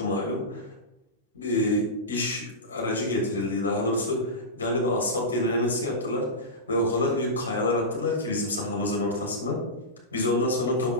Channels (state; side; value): normal; both; correlation -0.16